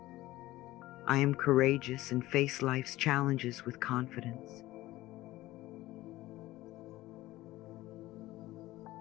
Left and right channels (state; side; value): quieter; right; 17.2 dB